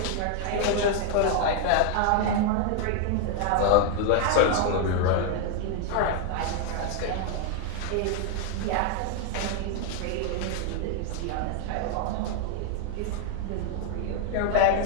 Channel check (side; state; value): both; different; correlation 0.00